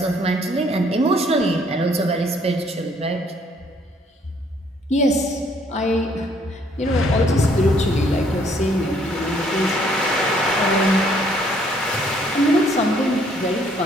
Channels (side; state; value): both; normal; correlation 0.64